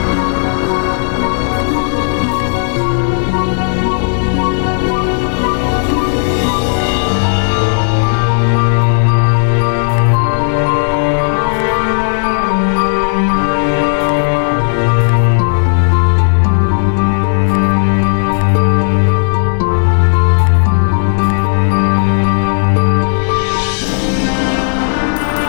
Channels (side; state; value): right; silent; digital silence